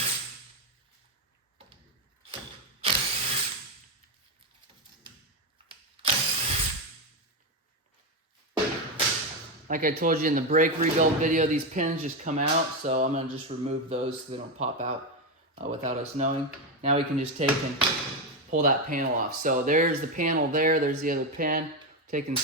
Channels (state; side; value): normal; both; correlation 0.10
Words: Like I told you in the brake rebuild video, these pins just come out, so I'm gonna just remove those so they don't pop out without us knowing. Now we can just take and pull that panel off. So there's the panel there, there's the other pin. Take and